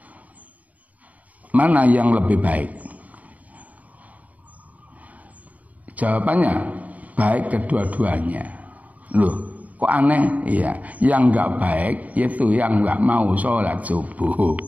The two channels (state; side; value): late; left; 0.072 ms